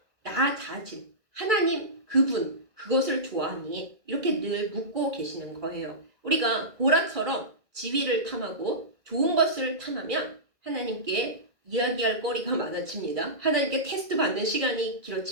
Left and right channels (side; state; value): left; late; 2.0 ms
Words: 나 자신, 하나님 그분, 그것을 좋아하니? 이렇게 늘 묻고 계시는 거예요. 우리가 고라처럼 지위를 탐하고 좋은 것을 탐하면 하나님께 이야기할 거리가 많아집니다. 하나님께 테스트 받는 시간이